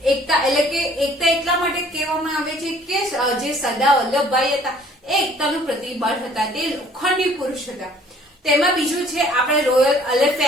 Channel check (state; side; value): normal; both; correlation 0.56